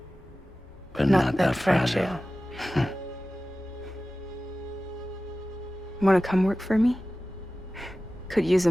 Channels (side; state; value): both; normal; correlation 0.95